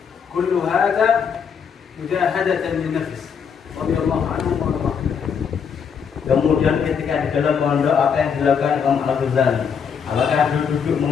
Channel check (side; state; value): right; quieter; 6.8 dB